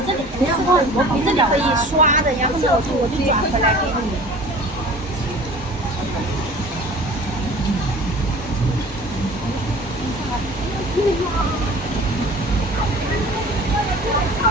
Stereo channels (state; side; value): normal; both; correlation 0.43